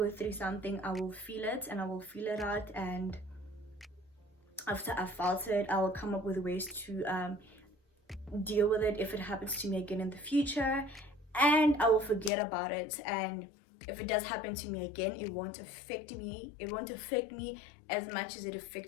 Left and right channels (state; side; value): drops out; right; at 12.3 s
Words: through something, I will feel it and I will feel it out, and after I've felt it, I will come up with ways to deal with it if it happens to me again in the future, and I will forget about it. And if it does happen to me again, it won't affect me as much as it